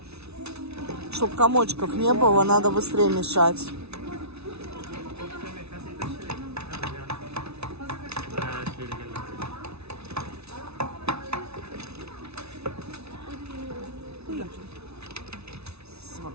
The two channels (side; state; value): left; late; 0.80 ms